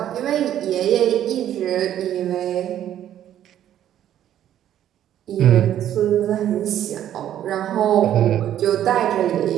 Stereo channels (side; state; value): left; quieter; 11.2 dB